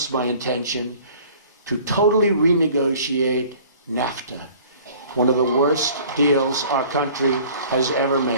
my intention to totally renegotiate NAFTA, one of the worst deals our country has ever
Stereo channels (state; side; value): inverted; both; correlation -0.50